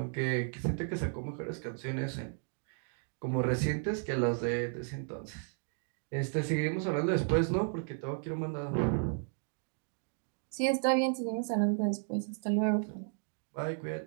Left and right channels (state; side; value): silent; left; 55 dB below the other